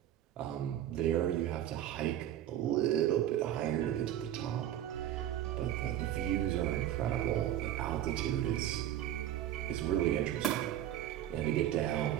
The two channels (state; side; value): quieter; left; 11.9 dB